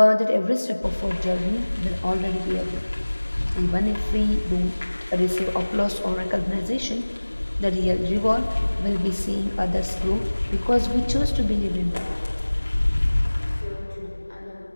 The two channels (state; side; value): inverted; both; correlation -1.00